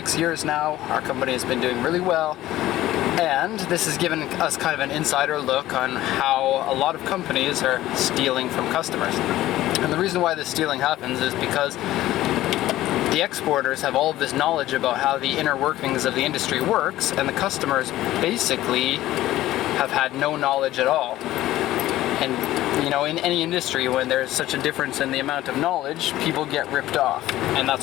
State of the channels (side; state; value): right; quieter; 15.1 dB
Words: years now. Our company has been doing really well, and this has given us kind of an insider look on how a lot of companies are stealing from customers. And the reason why this stealing happens is because the exporters have all of this knowledge about how the inner workings of the industry works, and the customers basically have had no knowledge at all. And you know, in any industry, when there's such a difference in the amount of knowledge, people get ripped off, and